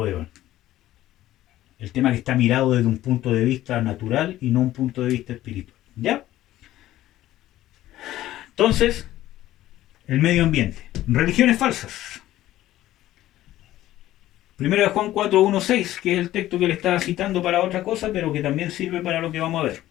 El tema que está mirado desde un punto de vista natural y no un punto de vista espiritual. ¿Ya? Entonces, el medio ambiente. Religiones falsas. 1 de Juan 4, 1, 6, que es el texto que le estaba citando para otra cosa, pero que también sirve para lo que vamos a ver.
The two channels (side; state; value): right; quieter; 14.5 dB